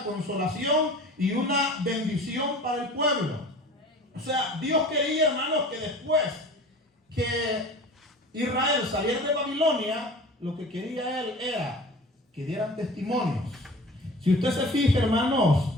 consolación y una bendición para el pueblo. O sea, Dios quería, hermanos, que después que Israel saliera de Babilonia, lo que quería Él era que dieran testimonios. Si usted se fija, hermanos,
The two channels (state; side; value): normal; both; correlation 0.41